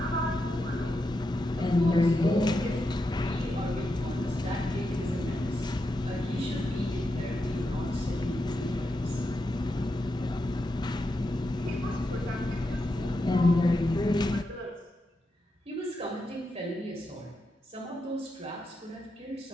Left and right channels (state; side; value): normal; both; correlation 0.86